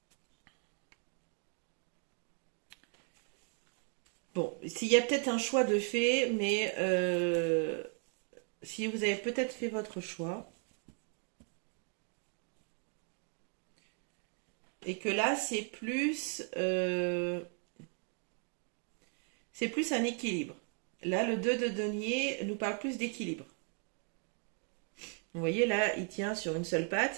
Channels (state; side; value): quieter; left; 38.5 dB